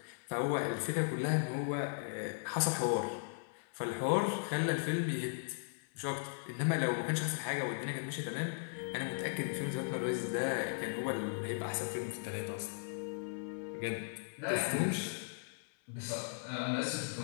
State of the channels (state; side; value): silent; right; 53 dB below the other